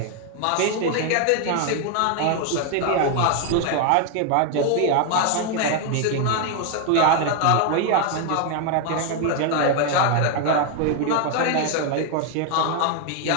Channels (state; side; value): different; both; correlation 0.00